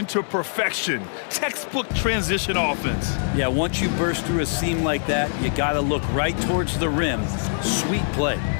to perfection. Textbook transition offense. Yeah, once you burst through a seam like that, you got to look right towards the rim. Sweet play.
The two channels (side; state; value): right; silent; digital silence